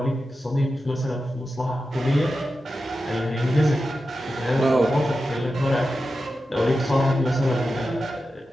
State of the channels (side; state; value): both; normal; correlation 0.91